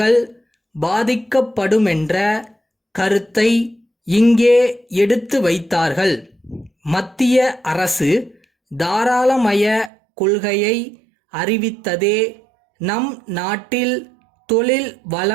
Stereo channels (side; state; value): left; drops out; at 9.9 s